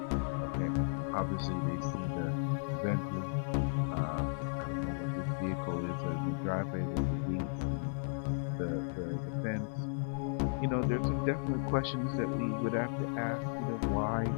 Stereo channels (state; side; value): silent; right; 55 dB below the other